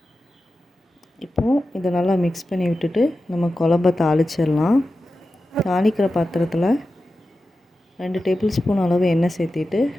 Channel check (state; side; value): normal; both; correlation 0.92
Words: இப்போது இதை நல்லா மிக்ஸ் பண்ணி விட்டுட்டு நம்ம குழம்ப தாளிச்சிடலாம். தாளிக்கிற பாத்திரத்தில் 2 டேபிள் ஸ்பூன் அளவு எண்ணெய் சேர்த்திட்டு